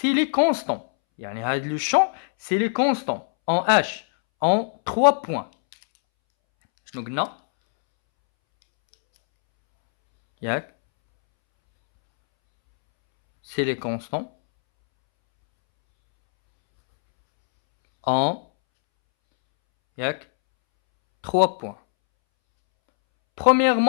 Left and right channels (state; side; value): silent; right; 64 dB below the other